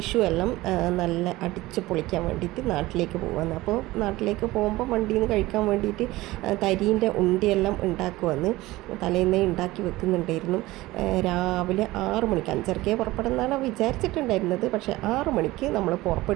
എല്ലാം നല്ല അടിച്ച് പൊളിക്കാൻ വേണ്ടിയിട്ട് നാട്ടിലേക്ക് പോകാമെന്ന്. അപ്പോൾ നാട്ടിലേക്ക് പോകുമ്പോൾ വണ്ടിയിൽ നിന്ന് കഴിക്കാൻ വേണ്ടിയിട്ട് തരീൻ്റെ ഉണ്ടിയെല്ലാം ഉണ്ടാക്കുമെന്ന് തലേന്നേ ഉണ്ടാക്കി വെക്കുന്നുണ്ടായിരുന്നു. രാവിലെ 6 മണിക്ക്, 5:30 പുറപ്പെടുന്നതാണ് വിചാരിച്ചിട്ടുണ്ടായിരുന്നത്. പക്ഷേ 6 മണിക്ക് നമ്മൾ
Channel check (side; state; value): left; quieter; 18.6 dB